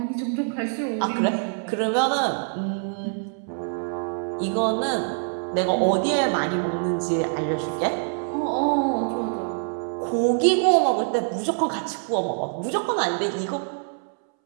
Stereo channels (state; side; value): silent; left; 62 dB below the other